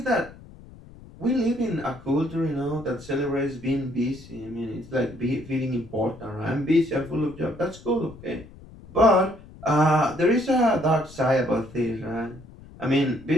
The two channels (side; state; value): left; noise; rumble, 19 dB below the sound